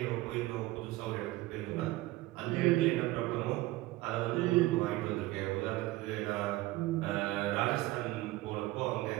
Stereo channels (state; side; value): quieter; left; 18.5 dB